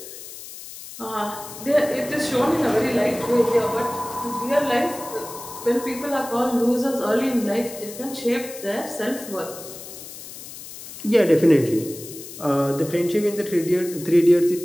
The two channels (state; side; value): noise; left; hiss, 13 dB below the sound